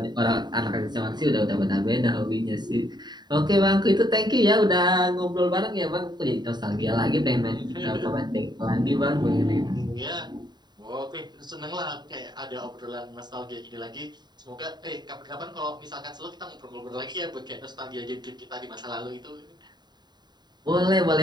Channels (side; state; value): left; late; 0.21 ms